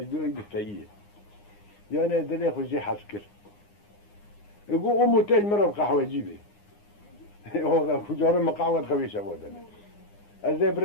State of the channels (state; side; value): late; right; 9.7 ms